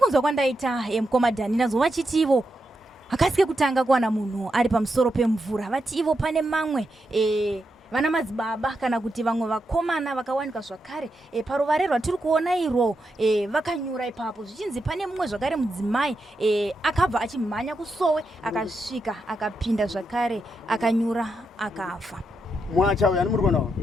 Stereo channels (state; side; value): normal; both; correlation 0.85